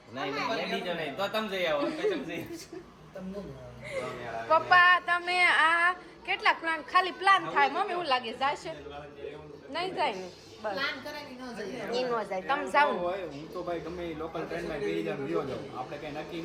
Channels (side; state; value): both; identical; correlation 1.00